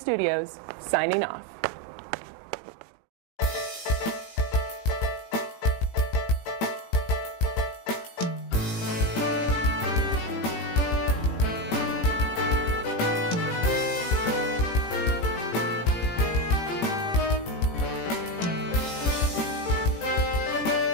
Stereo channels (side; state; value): right; late; 18 ms